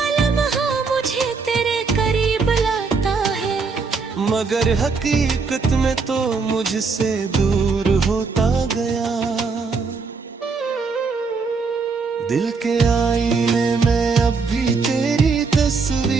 लम्हा मुझे तेरे करीब लाता है, मगर हकीकत में तो मुझसे दूर होता गया। दिल के आईने में अब भी तेरी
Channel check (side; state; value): left; quieter; 4.6 dB